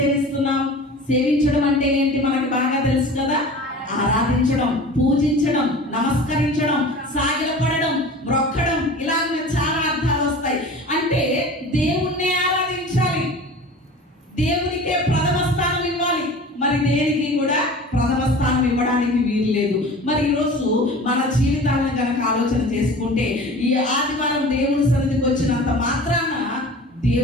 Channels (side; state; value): both; normal; correlation 0.39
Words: సేవించడం అంటే ఏంటి మనకి బాగా తెలుసు కదా. ఆరాధించడం, పూజించడం, నమస్కరించడం, సాగిలపడడం, మొక్కడం, ఇలాగ చాలా అర్థాలు వస్తాయి. అంటే దేవుణ్ణే ఆరాధించాలి, దేవునికే ప్రథమ స్థానం ఇవ్వాలి. మరి దేనికి కూడా ప్రథమ స్థానం ఇవ్వడానికి వీలు లేదు. మరి ఈరోజు మన జీవితాలను కనుక ఆలోచన చేసుకుంటే, ఈ ఆదివారం దేవుని సన్నిధికి వచ్చినంత మాత్రాన